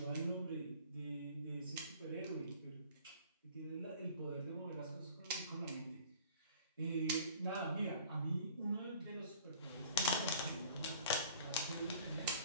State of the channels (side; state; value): both; inverted; correlation -0.49